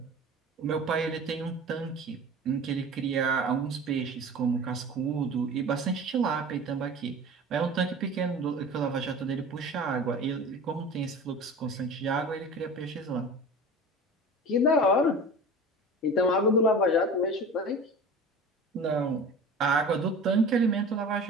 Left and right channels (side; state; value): both; normal; correlation 0.37